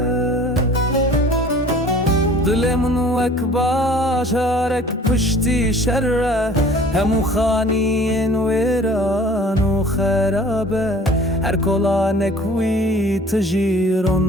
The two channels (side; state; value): both; normal; correlation 0.49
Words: Dilemin vek başarek pişti şerre hemu khaniyin veran u kharabe her kolanek vi